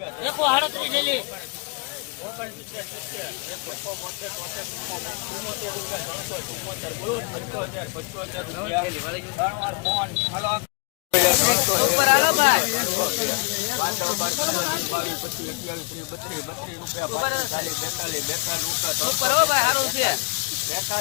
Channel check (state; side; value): quieter; right; 31.6 dB